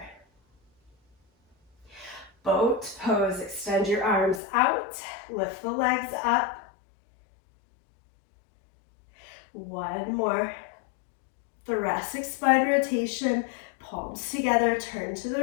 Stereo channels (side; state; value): right; drops out; at 4.4 s